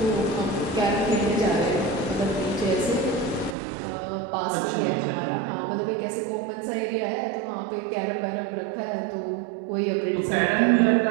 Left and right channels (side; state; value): left; drops out; at 3.6 s